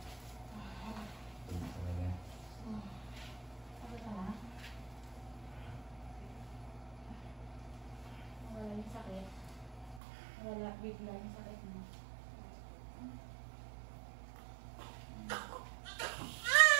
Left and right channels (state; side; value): drops out; left; at 10.0 s